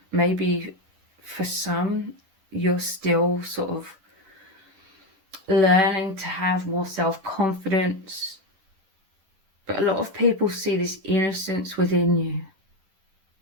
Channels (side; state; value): left; late; 10 ms